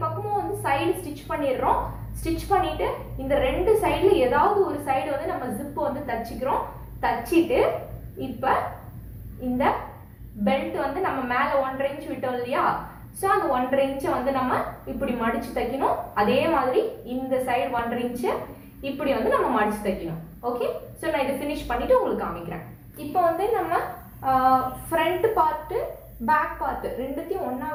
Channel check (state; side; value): identical; both; correlation 1.00